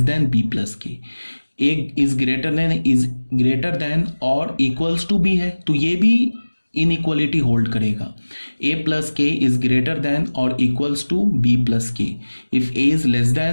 than B plus K. A is greater than और equals to B है तो ये भी इनइक्वालिटी होल्ड करेगा। A plus K is greater than और equals to B plus के। If A is less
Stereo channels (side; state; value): both; inverted; correlation -1.00